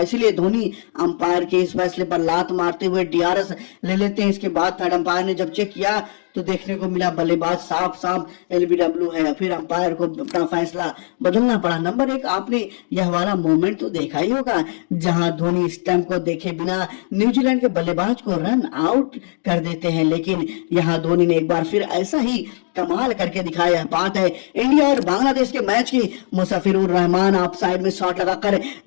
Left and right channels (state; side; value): silent; right; 66 dB below the other